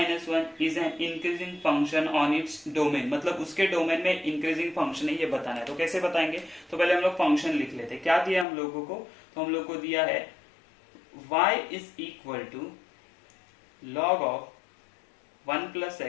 is an increasing function on its domain। मतलब उसके डोमेन में इंक्रीजिंग फंक्शन है, ये बताना है। तो कैसे बताएंगे, तो पहले हम लोग फंक्शन लिख लेते हैं। क्या दिया हम लोगों को, तो हम लोग को दिया है y is equal to log of 1 plus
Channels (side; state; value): right; drops out; at 8.5 s